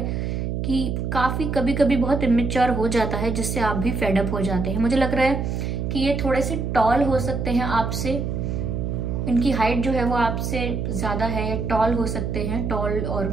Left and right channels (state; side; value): noise; right; hum, 2 dB below the sound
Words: कि काफी कभी कभी बहुत इमेच्योर हो जाता है, जिससे आप भी फेड अप हो जाते हैं। मुझे लग रहा है कि ये थोड़े से टॉल हो सकते हैं आपसे, इनकी हाइट जो है वो आपसे ज्यादा है, या टॉल हो सकते हैं, टॉल और